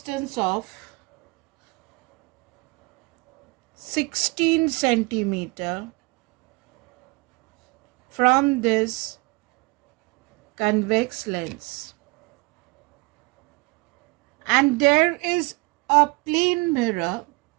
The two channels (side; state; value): left; quieter; 26.7 dB